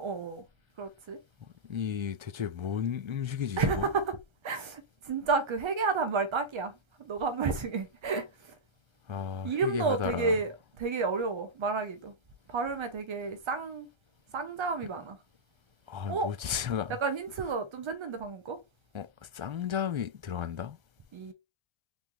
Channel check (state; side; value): late; left; 1.3 ms